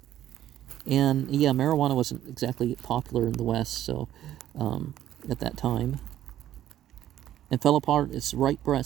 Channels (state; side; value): quieter; left; 12.2 dB